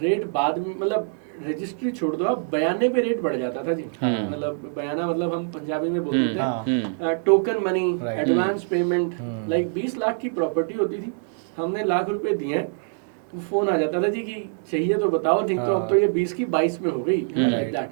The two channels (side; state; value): left; silent; digital silence